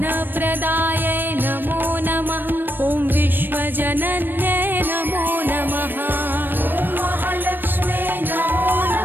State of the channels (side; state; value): left; late; 0.094 ms